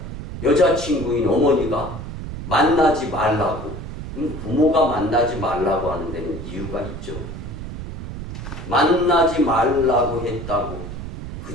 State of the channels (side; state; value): right; noise; rumble, 8 dB below the sound